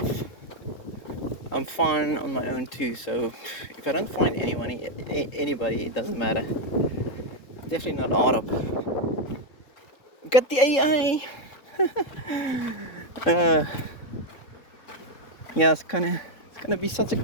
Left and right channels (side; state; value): right; late; 3.7 ms